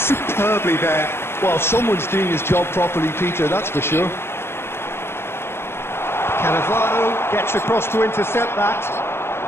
there. Well, someone's doing his job properly, Peter, that's for sure. Cannavaro gets across to intercept that.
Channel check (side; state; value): right; late; 0.12 ms